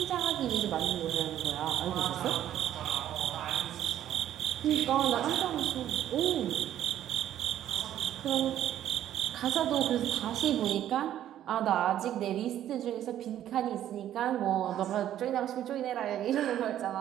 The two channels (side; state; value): left; quieter; 11.6 dB